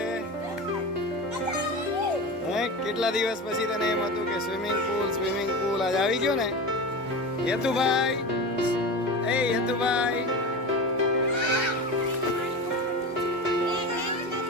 કેટલા દિવસ પછી તને એમ હતું કે સ્વિમિંગ પુલ આજ આવી ગયો ને? યતુભાઈ, એ યતુભાઈ,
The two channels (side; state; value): both; normal; correlation 0.27